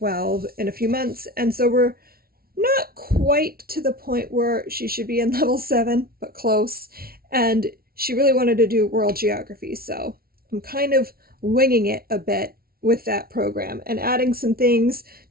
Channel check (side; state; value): left; late; 0.44 ms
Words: in a few months, and so we're not quite to the point where she should be in level 7, but close. And she really wanted to do world geography, so I'm kind of winging it a bit with that program and adding some things